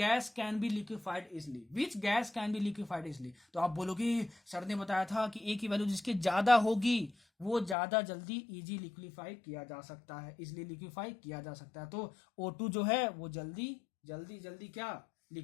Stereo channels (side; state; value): right; drops out; at 7.8 s